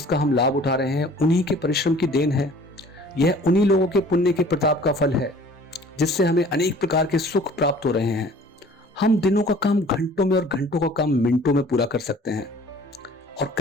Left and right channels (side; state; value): both; normal; correlation 0.50